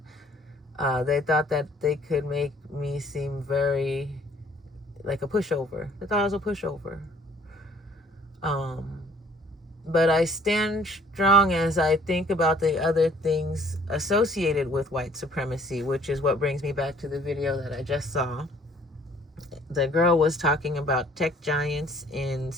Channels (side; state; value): both; normal; correlation 0.58